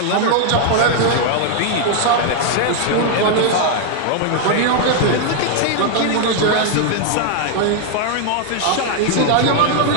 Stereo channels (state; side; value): different; both; correlation 0.00